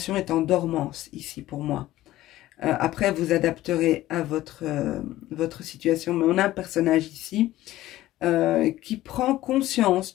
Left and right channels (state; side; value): quieter; right; 15.4 dB